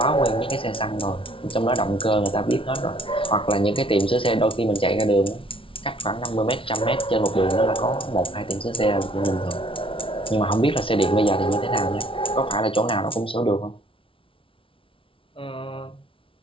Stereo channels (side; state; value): right; late; 0.25 ms